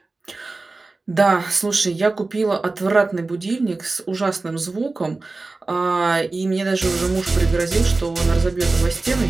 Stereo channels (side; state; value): left; quieter; 3.4 dB